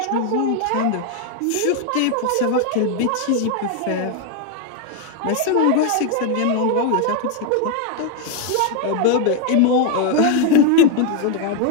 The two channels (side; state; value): both; different; correlation 0.01